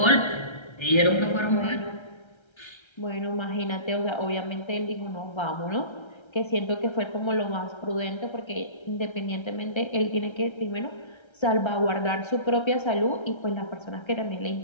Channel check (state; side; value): late; right; 1.3 ms